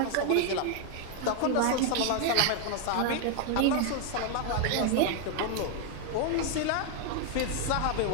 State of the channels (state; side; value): different; both; correlation 0.00